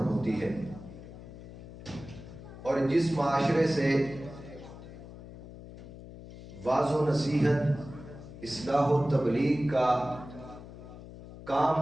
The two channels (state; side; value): noise; left; hum, 15 dB below the sound